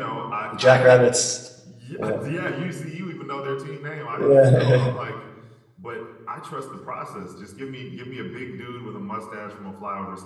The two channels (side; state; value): both; identical; correlation 1.00